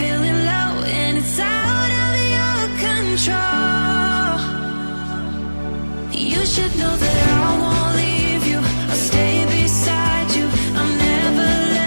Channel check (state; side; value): inverted; both; correlation -1.00